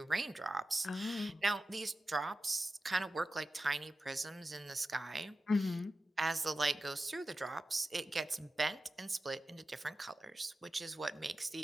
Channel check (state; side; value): normal; both; correlation 0.93